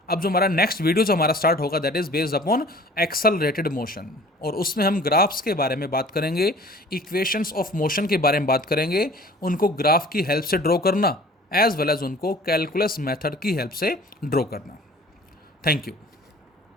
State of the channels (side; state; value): both; normal; correlation 0.48